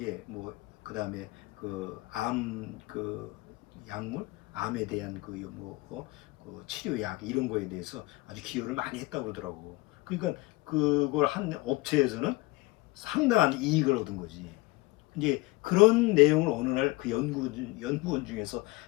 뭐 그 다음에 그 약물, 암에 대한 그 치료약 이런 거에 대해서 아주 기여를 많이 했다고 그러더라고. 그러니까 그걸 한 업체에서는 상당한 이익을 얻은 거지. 이제 그런 내용을 어느 날 그 연구원 중에서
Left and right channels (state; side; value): quieter; right; 21.8 dB